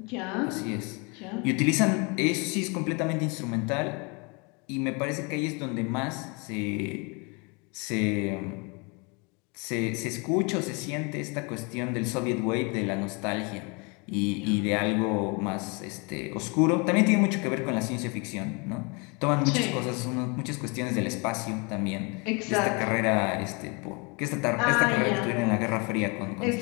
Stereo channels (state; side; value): quieter; right; 31.2 dB